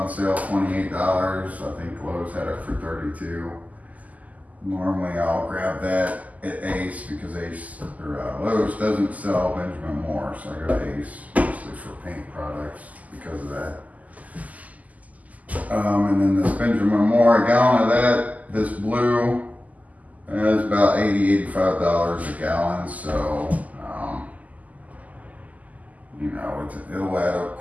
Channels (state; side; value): late; left; 0.076 ms